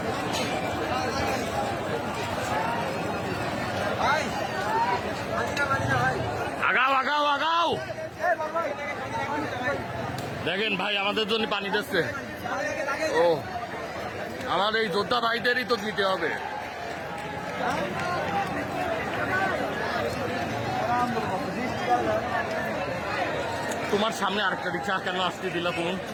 আগাও আগাও আগাও, দেখেন ভাই আমাদের জন্য পানি দিচ্ছে। ও আমার এই যোদ্ধা ভাইদেরই তো দিতে হবে। তোমার সামনে আরেকটা রিক্সা কেন আসতে দিল তুমি?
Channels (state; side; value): identical; both; correlation 1.00